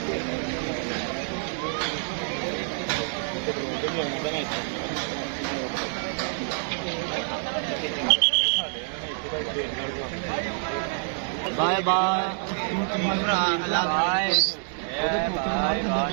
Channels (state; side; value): silent; left; 60 dB below the other